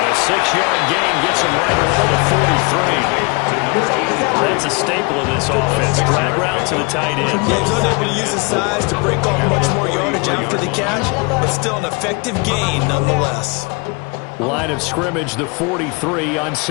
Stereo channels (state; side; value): quieter; right; 29.5 dB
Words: a 6-yard gain gets him right around the 43. That's a staple of this offense. Drag route to the tight end. Yeah, he's unable to use his size to break off much more yardage after the catch, but still an effective gain nonetheless. Line of scrimmage, the 43 on